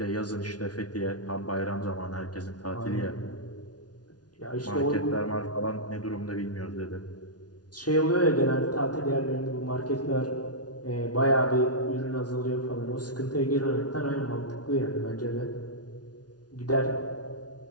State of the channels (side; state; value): right; late; 0.69 ms